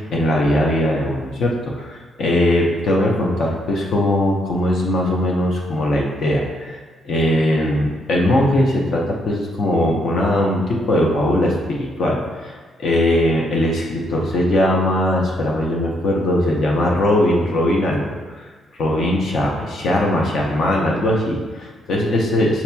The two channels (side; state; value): both; normal; correlation 0.73